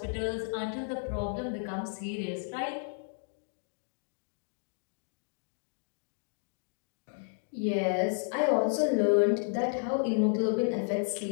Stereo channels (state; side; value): silent; right; digital silence